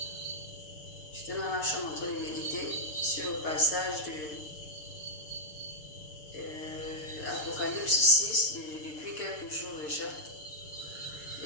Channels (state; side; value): late; right; 6.6 ms